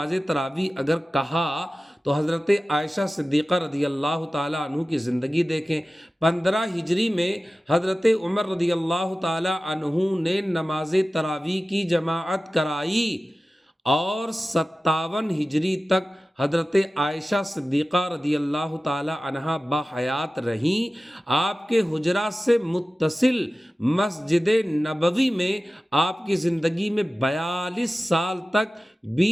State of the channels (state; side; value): normal; both; correlation 0.96